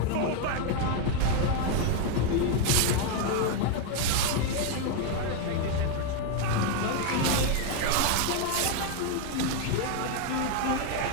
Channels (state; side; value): different; both; correlation 0.01